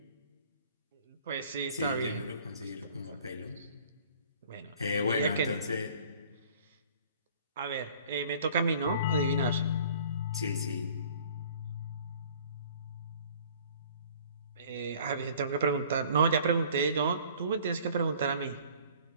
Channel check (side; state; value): both; inverted; correlation -0.52